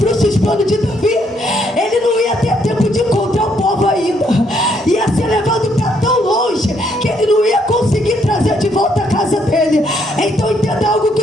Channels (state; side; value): normal; both; correlation 0.71